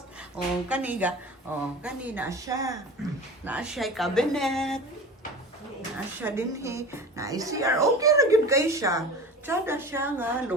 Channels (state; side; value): normal; both; correlation 0.35